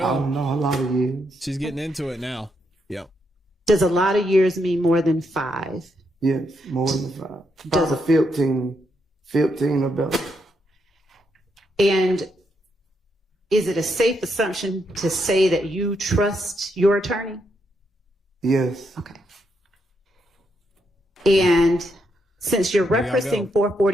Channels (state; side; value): normal; both; correlation 0.79